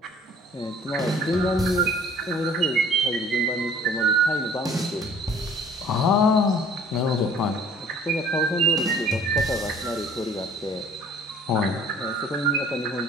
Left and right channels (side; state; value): both; normal; correlation 0.53